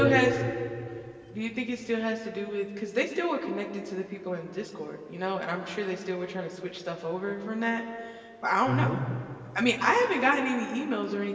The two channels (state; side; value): identical; both; correlation 1.00